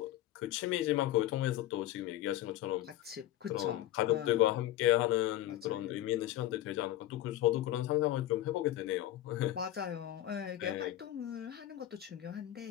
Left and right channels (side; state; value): right; quieter; 13.8 dB